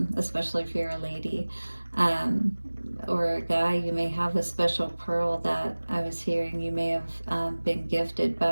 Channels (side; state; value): both; inverted; correlation -1.00